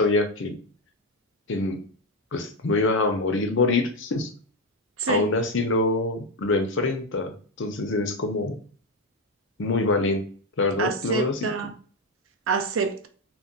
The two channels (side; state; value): both; normal; correlation 0.08